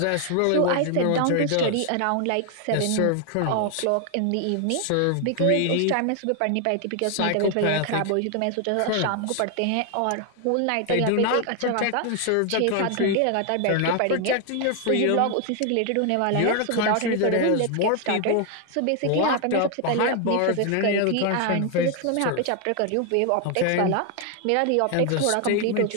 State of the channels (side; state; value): both; different; correlation 0.00